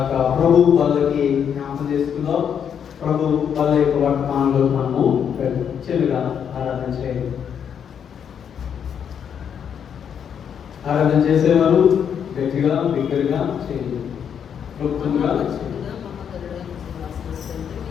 ప్రభు వాళ్ళకి జ్ఞాపకం చేసుకుందాం. ప్రభు వాళ్ళ యొక్క వర్తమానంలో మనము చెలుగా ఆరాధన చేయాలి. ఆరాధన చేసేవారు గట్టిగా బిగ్గరగా చేయాలి, క్లుప్తంగా చేయాలి.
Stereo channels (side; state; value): right; quieter; 8.0 dB